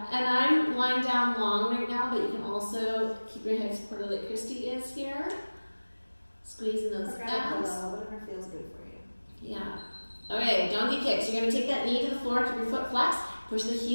and I'm lying down long right now, but you can also keep your head supported like Christy is here. Squeezing those abs. Whatever feels good for you. Yeah. Okay, donkey kicks. You're going to take that knee to the floor, keep your foot flexed, push the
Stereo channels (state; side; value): inverted; both; correlation -1.00